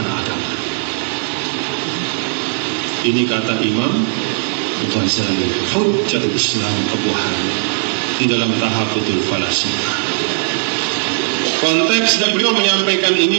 agama. Ini kata Imam Ghazali, Hujjatul Islam Abu Hanif, di dalam Tahafutul Falasifah. Konteks dan beliau menyampaikan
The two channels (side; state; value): left; silent; 66 dB below the other